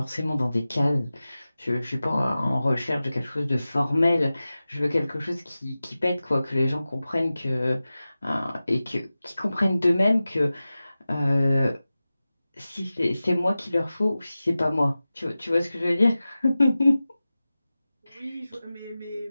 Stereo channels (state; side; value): inverted; both; correlation -0.96